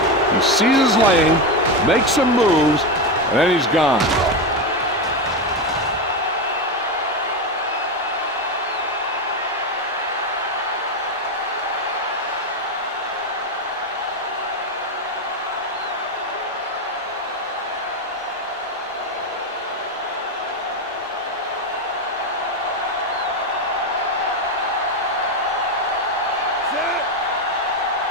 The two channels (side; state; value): both; normal; correlation 0.12